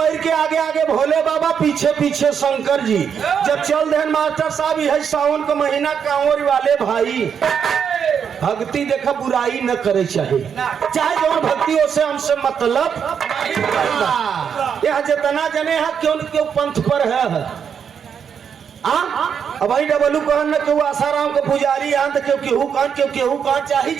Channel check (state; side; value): quieter; left; 7.4 dB